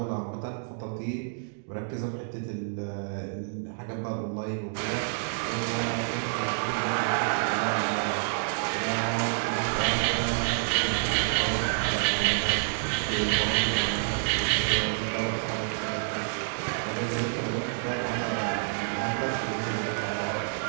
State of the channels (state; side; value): silent; left; digital silence